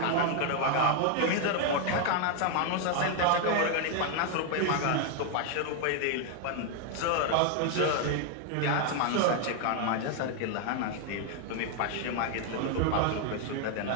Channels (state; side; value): different; both; correlation 0.00